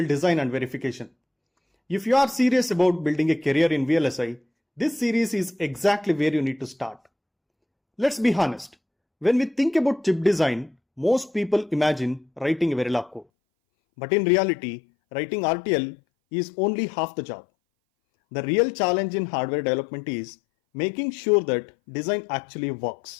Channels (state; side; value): drops out; right; at 13.2 s